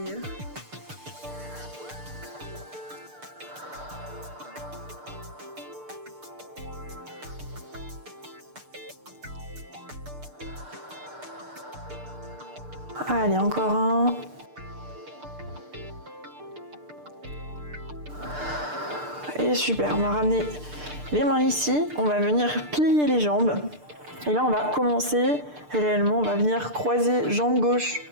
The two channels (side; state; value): left; late; 6.7 ms